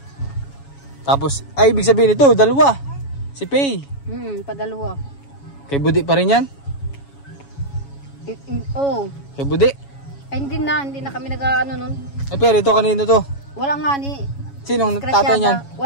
Tapos, ay ibig sabihin ito, dalawa. Si Pay. Padalawa. Kay Budi pa rin yan? Oo. Kay Budi? Ay, hindi na kami nag-ano nun. Eh pero ito kanino to? Wala nga ni. Sinong tatay niyan?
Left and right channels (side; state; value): right; late; 7.2 ms